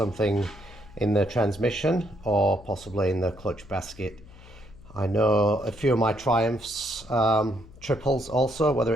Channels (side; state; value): left; noise; hum, 21 dB below the sound